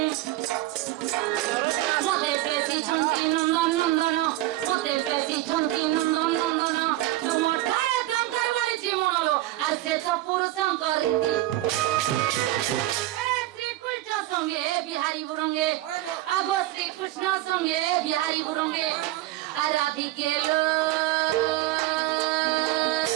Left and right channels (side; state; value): left; quieter; 16.0 dB